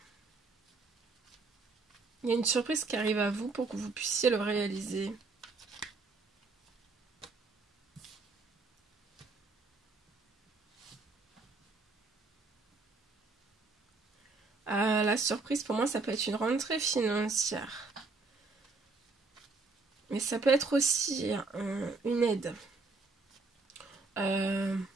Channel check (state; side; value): quieter; left; 3.9 dB